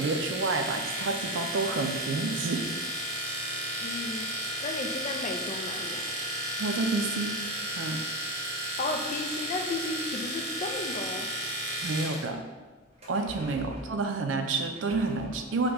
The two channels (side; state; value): both; normal; correlation 0.17